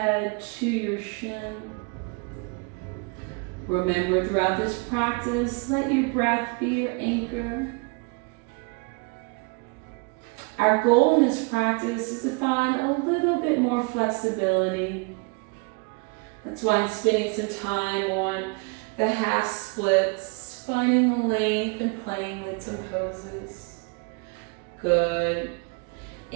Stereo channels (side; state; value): left; quieter; 32.7 dB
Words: to your shin. Remember, throughout this practice, let your breath be your anchor. Our goal in this practice is to find a little bit more flexibility. That's why I'm spending some time on the half splits, finding the length and playing with some poses. Good.